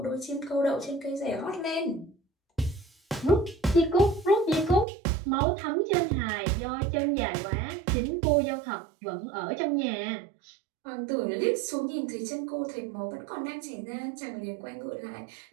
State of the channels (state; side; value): drops out; left; at 4.9 s